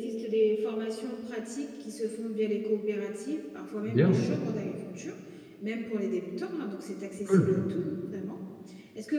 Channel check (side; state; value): both; identical; correlation 1.00